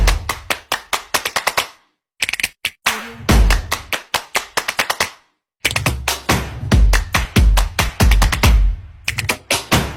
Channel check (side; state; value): both; identical; correlation 1.00